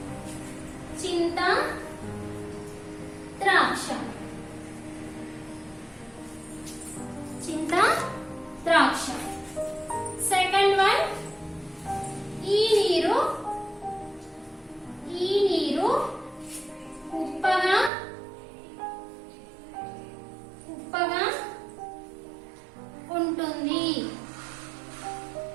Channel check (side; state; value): left; drops out; at 17.9 s